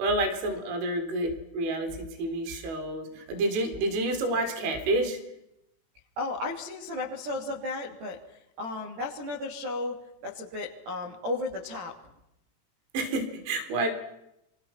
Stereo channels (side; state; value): left; late; 18 ms